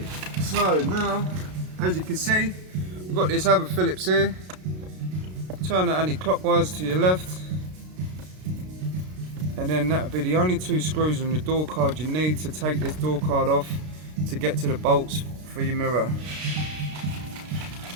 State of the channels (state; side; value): late; left; 32 ms